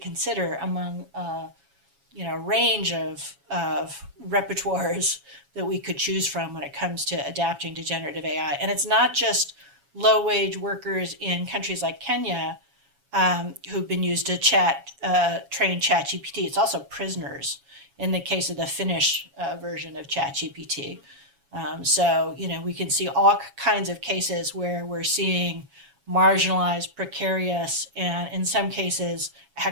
among a range of repertoires that we could choose from when it comes to adapting to generative AI. And it's not just low-wage workers in countries like Kenya who've been used to train ChatGPT. It's also prisoners in the case of the Finnish version of ChatGPT. So we can see all kinds of cases where we're seeing marginalized, precarious, and in some cases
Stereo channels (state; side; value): late; left; 7.2 ms